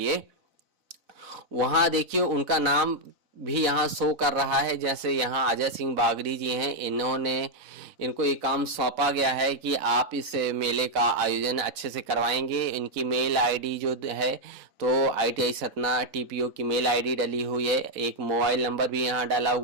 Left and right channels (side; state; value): left; late; 4.1 ms